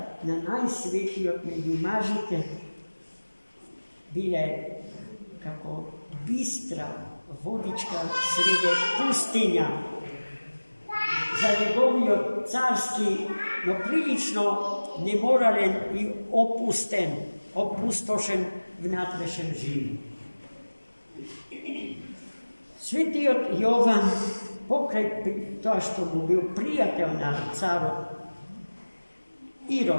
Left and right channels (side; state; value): both; inverted; correlation -1.00